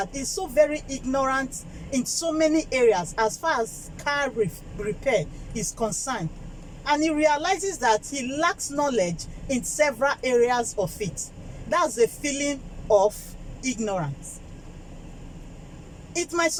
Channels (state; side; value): identical; both; correlation 1.00